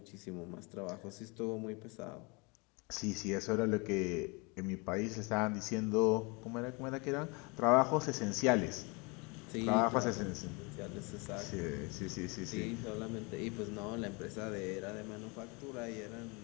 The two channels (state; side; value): quieter; right; 29.3 dB